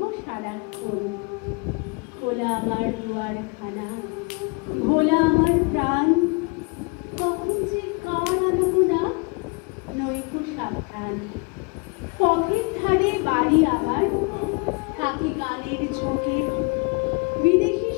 সারাক্ষণ। খোলা আমার দুয়ারখানা, ভোলা আমার প্রাণ, কখন যে কার আনবো না নৈকো সাবধান। পথের ধারে বাড়ি আমার, থাকি গানের ঝোঁকে, বিদেশি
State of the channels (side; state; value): right; quieter; 30.6 dB